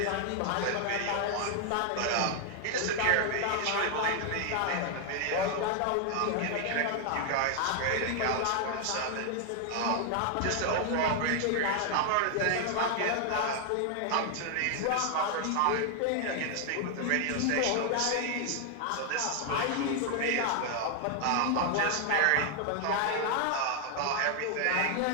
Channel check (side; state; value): both; different; correlation 0.00